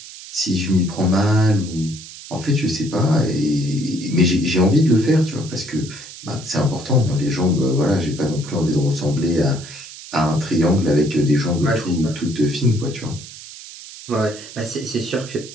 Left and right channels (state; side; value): noise; right; hiss, 15 dB below the sound